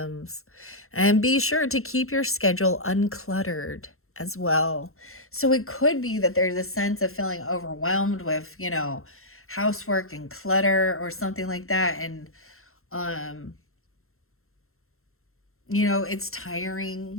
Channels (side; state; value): right; late; 0.62 ms